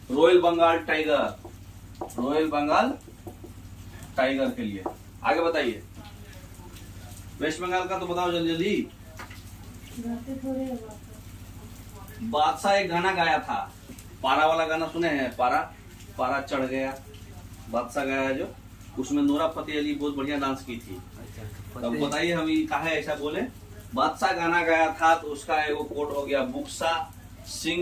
Royal Bengal tiger, royal Bengal tiger के लिए। आगे बताइए। वेस्ट बंगाल का तो बताओ जल्दी जल्दी। बादशाह एक गाना गाया था, पारा वाला गाना सुने हैं? पारा, पारा चढ़ गया, बादशाह गाया जो, उसमें नोरा फतेह अली बहुत बढ़िया डांस की थी। अब बताइए हम काहे ऐसा बोले? बादशाह गाना गाया था तो उसका एगो कोट हो गया बुक्सा।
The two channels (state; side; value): identical; both; correlation 1.00